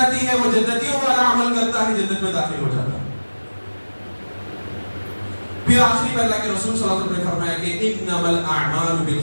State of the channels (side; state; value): both; inverted; correlation -1.00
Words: ہے، وہ جنتیوں والا عمل کرتا ہے، جنت میں داخل ہو جاتا ہے. پھر آخری میں اللہ کے رسول صلی اللہ علیہ وسلم نے فرمایا کہ انما الاعمال